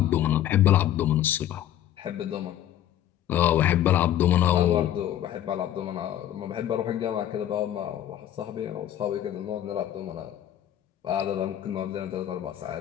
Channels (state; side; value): quieter; right; 11.7 dB